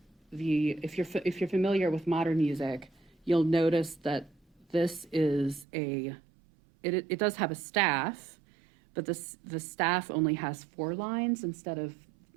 if you're familiar with modern music, you'll notice that this is it does have a staff, but the staff only has 4 lines instead of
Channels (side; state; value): left; drops out; at 5.7 s